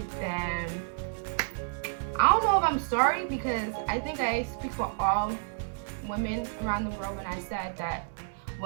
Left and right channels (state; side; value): silent; left; 58 dB below the other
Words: then I don't know if I'm sorry, because I think I speak for all women around the world when I said that